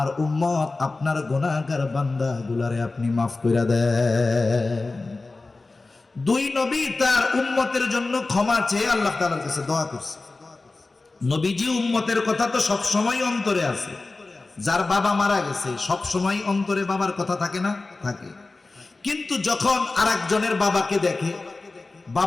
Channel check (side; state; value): right; quieter; 3.5 dB